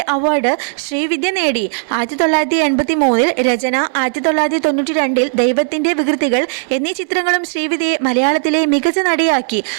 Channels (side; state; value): left; silent; 61 dB below the other